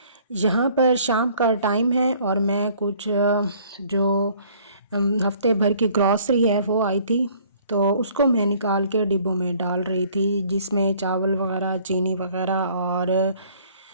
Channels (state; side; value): inverted; both; correlation -0.57